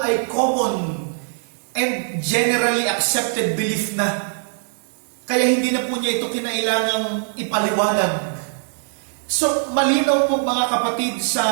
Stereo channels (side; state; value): left; silent; digital silence